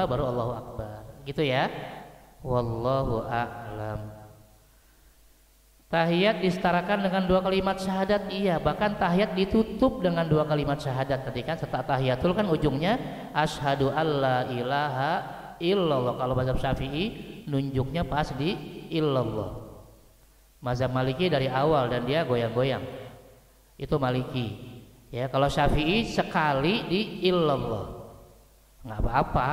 baru Allahu Akbar. Gitu ya. Wallahu a'lam. Tahiyat disetarakan dengan 2 kalimat syahadat, iya. Bahkan tahiyat ditutup dengan 2 kalimat syahadat. Tadi kan setelah tahiyatul kan ujungnya asyhadu alla ilaha illallah. Kalau mazhab Syafi'i nunjuknya pas di illallah. Mazhab Maliki dari awal dan dia goyang-goyang. Itu Maliki. Ya, kalau Syafi'i sekali di illallah. Nggak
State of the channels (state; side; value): identical; both; correlation 1.00